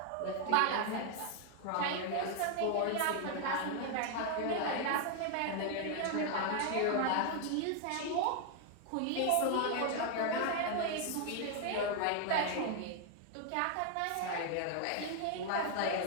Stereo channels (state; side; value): different; both; correlation 0.00